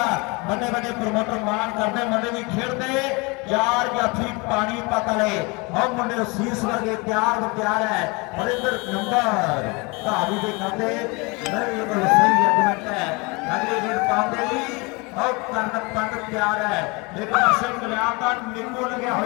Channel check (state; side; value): quieter; right; 27.5 dB